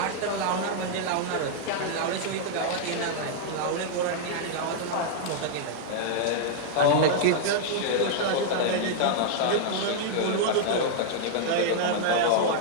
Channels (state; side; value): different; both; correlation -0.01